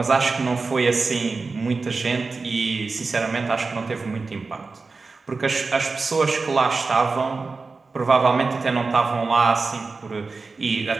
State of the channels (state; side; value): quieter; left; 4.1 dB